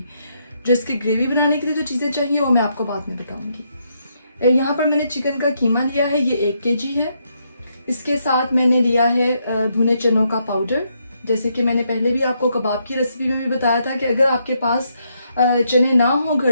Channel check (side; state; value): both; inverted; correlation -0.77